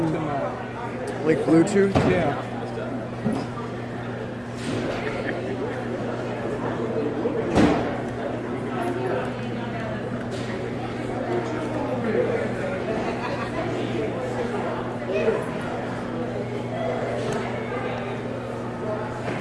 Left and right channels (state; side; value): identical; both; correlation 1.00